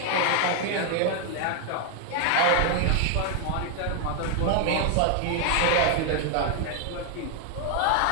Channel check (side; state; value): both; different; correlation 0.00